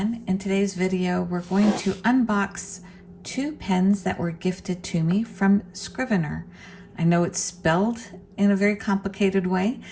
in today's video we're going to unbox two pens that were gifted to me from Scriveiner. I know it's spelled in a very complicated way,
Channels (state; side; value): identical; both; correlation 1.00